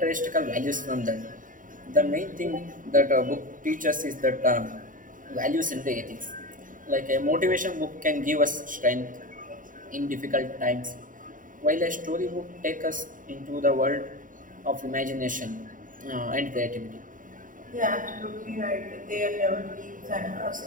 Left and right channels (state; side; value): late; left; 0.39 ms